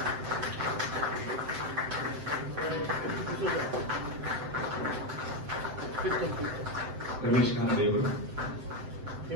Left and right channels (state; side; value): late; left; 7.7 ms